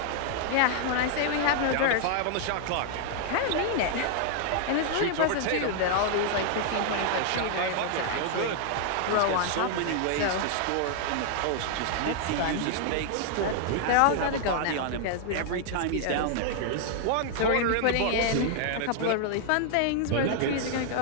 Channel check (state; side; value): different; both; correlation 0.00